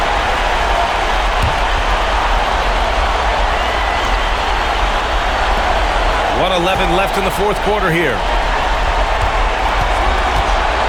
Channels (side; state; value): both; identical; correlation 1.00